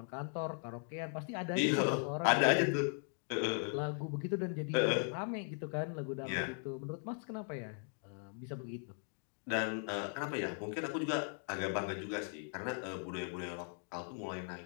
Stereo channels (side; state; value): right; silent; 52 dB below the other